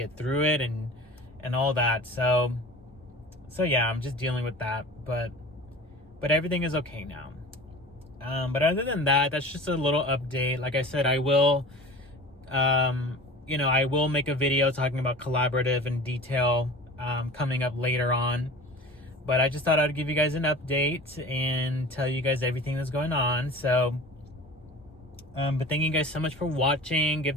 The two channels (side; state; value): both; normal; correlation 0.38